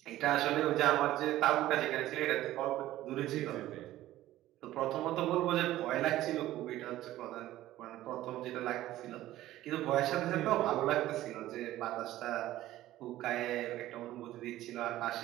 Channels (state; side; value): quieter; left; 14.8 dB